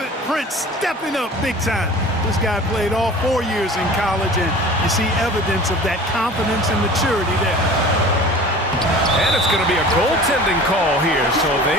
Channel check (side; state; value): both; normal; correlation 0.41